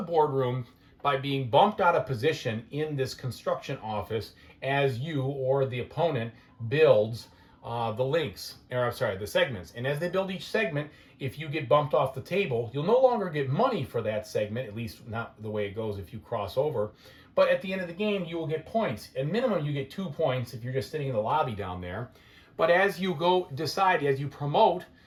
by being bumped out of position in this construction office as you or the opponent builds the segments. And as they build each segment, if you get bumped off the table, you'll no longer get money for that segment, at least not the way it goes if you cross over. But at the end of the game, you will get points. At minimum, you get 2 points if you're just sitting in the lobby down there. But as you as you promote,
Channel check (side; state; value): both; identical; correlation 1.00